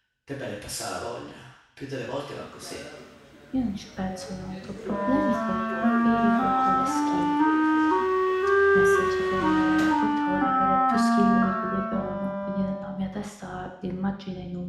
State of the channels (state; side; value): identical; both; correlation 1.00